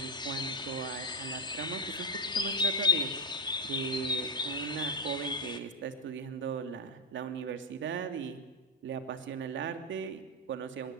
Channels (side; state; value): both; normal; correlation 0.04